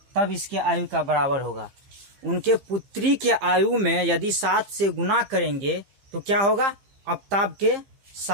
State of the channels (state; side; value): late; left; 15 ms